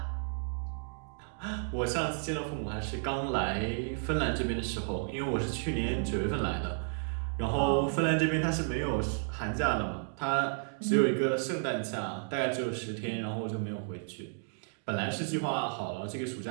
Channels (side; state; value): left; silent; 56 dB below the other